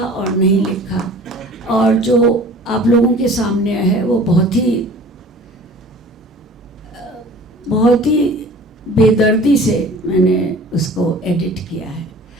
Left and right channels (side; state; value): both; normal; correlation 0.45